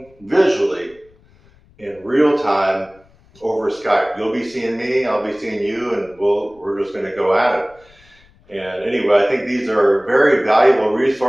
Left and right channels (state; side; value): noise; left; rumble, 30 dB below the sound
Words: visually in real time over Skype. You'll be seeing me, I'll be seeing you, and we're just going to go at it. And anyway, I think these are very valuable